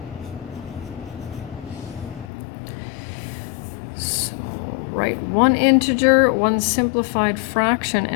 Write one integer, one simplified fraction,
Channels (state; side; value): drops out; right; at 2.2 s